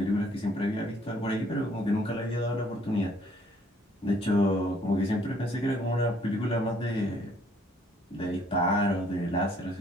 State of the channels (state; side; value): normal; both; correlation 0.63